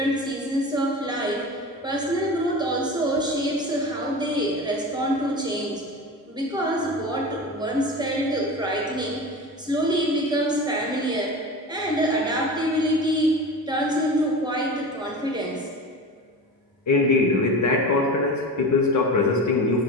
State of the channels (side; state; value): both; normal; correlation 0.30